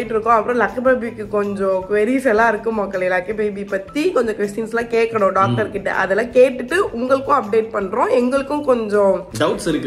இருக்கோம். அப்புறம் லக்கி பேபிக்கு கொஞ்சம் queries எல்லாம் இருக்கு மக்களே. லக்கி பேபி பத்தி கொஞ்சம் क्वेश्चंस எல்லாம் கேட்கணும் டாக்டர் கிட்ட. அதெல்லாம் கேட்டுட்டு உங்களுக்கும் அப்டேட் பண்றோம். எங்களுக்கும் கொஞ்சம் டவுட்ஸ்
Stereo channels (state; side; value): identical; both; correlation 1.00